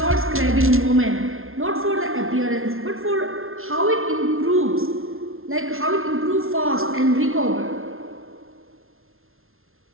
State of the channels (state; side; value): late; left; 0.61 ms